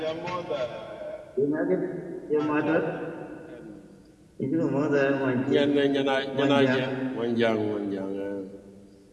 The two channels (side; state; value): both; identical; correlation 1.00